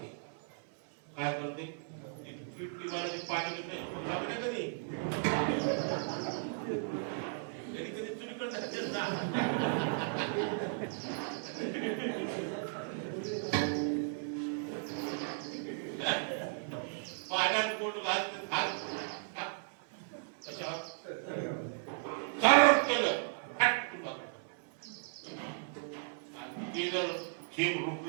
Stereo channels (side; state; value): left; silent; 54 dB below the other